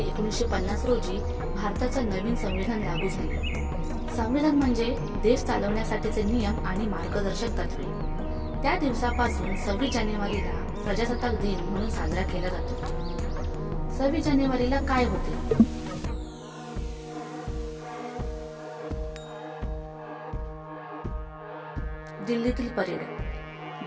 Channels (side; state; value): both; identical; correlation 1.00